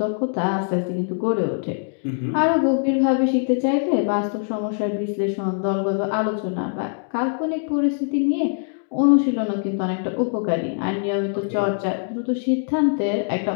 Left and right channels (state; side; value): silent; right; digital silence